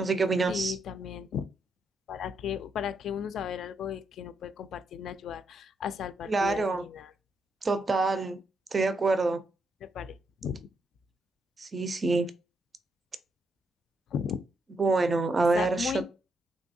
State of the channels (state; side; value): normal; both; correlation 0.79